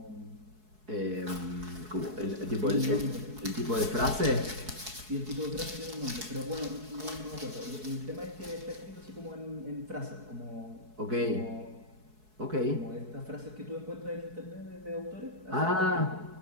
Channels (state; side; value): late; left; 4.7 ms